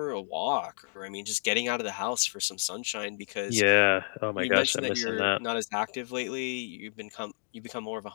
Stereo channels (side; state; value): right; silent; digital silence